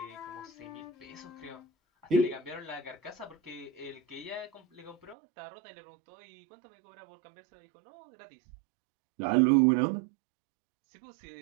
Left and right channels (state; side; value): drops out; left; at 5.2 s